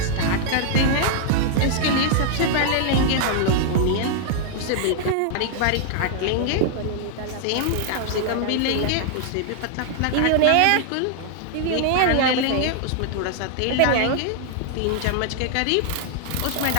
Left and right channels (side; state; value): both; different; correlation 0.00